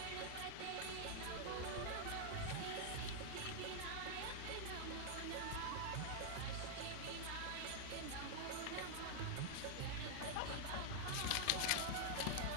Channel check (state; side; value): different; both; correlation -0.01